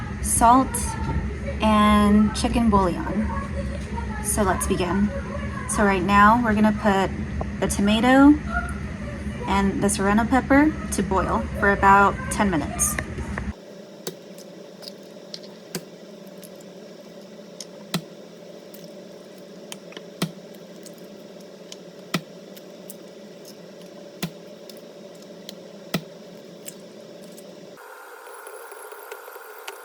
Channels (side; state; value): both; identical; correlation 1.00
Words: salt, and chicken bouillon. So let's begin. So right now we're gonna put the tomato and the serrano pepper to boil for about 10 minutes.